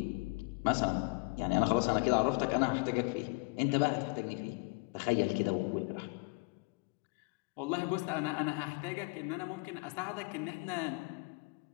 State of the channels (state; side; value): quieter; right; 29.6 dB